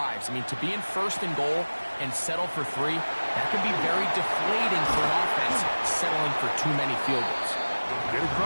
I mean, to be in 1st and goal and settle for 3, that can be very deflating for an offense settling for too many field goals. Get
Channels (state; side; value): inverted; both; correlation -1.00